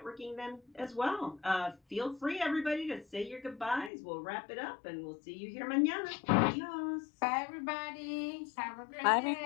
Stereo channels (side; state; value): right; drops out; at 3.9 s